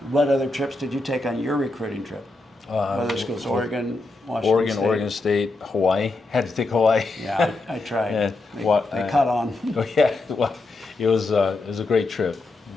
What other trips did you take on your recruiting trip? Other schools, Oregon, Washington State. Oregon State, Hawaii. Had to take Hawaii. Yeah, I tried. Yeah, They caught on. Oh yeah, well, it was a great trip,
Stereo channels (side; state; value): right; quieter; 3.1 dB